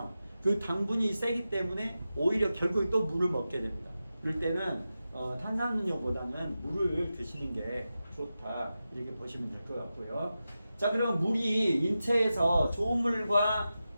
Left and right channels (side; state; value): both; inverted; correlation -0.92